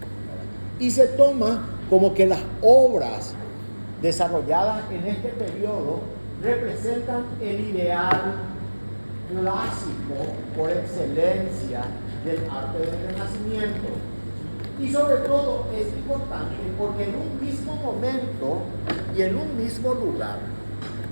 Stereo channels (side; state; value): both; inverted; correlation -1.00